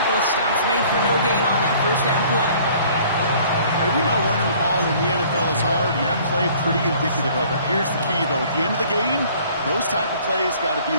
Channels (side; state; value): both; inverted; correlation -0.54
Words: Stops made for no gain on that first down play. We know running the ball in the NFL is hard, and that play pretty indicative of it. Here's the key, though. At the end of the game, those type of plays got to be in